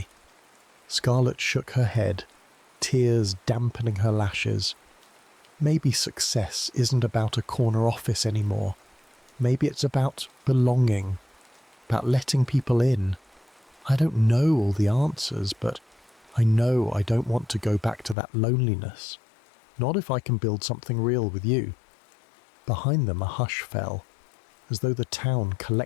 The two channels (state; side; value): drops out; right; at 18.2 s